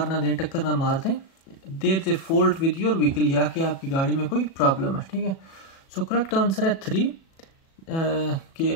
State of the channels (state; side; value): late; right; 37 ms